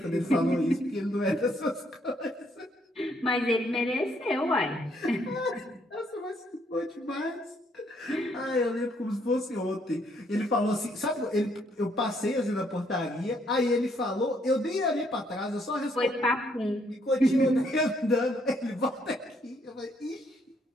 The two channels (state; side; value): normal; both; correlation 0.70